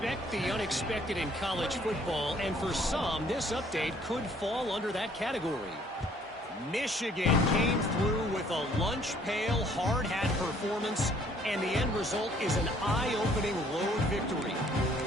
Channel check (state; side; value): normal; both; correlation 0.61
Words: the unexpected in college football, and for some, this update could fall under that category. Michigan came through with a lunch pail, hard hat performance, and the end result is an eye-opening road victory.